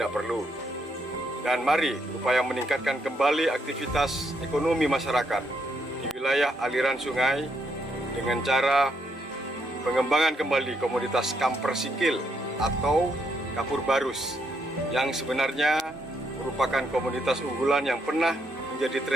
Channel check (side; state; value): both; normal; correlation 0.76